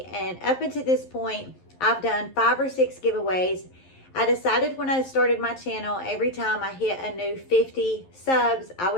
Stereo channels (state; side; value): late; right; 11 ms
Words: and up until this point, I've done 5 or 6 giveaways. I decided when I started my channel, every time I hit a new 50 subs, I